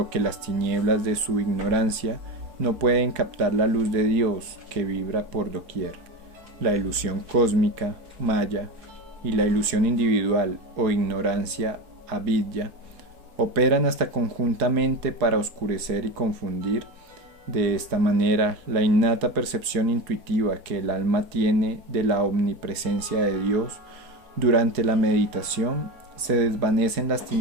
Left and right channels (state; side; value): late; left; 4.7 ms